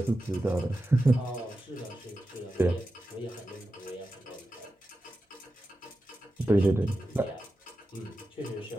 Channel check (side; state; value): both; normal; correlation 0.92